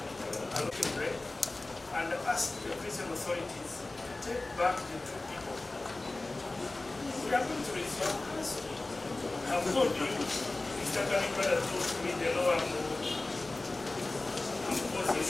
look at break and ask the prison authorities to take back the two people. We are going to resolve this. I've told you, Mr. Kanibada told me the law I'm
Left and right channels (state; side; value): quieter; right; 3.0 dB